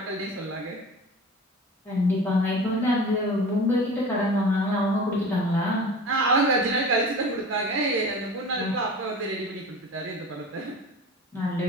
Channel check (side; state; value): both; normal; correlation 0.37